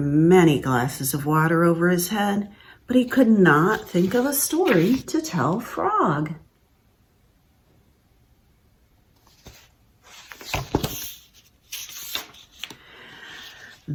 glasses of water over his head, but he could not think of a story to tell Frog.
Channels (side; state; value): both; identical; correlation 1.00